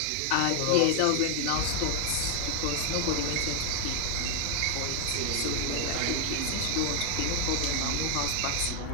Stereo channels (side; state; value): both; different; correlation 0.00